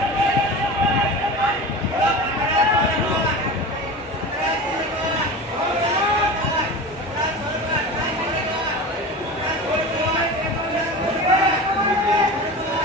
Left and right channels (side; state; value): both; normal; correlation 0.31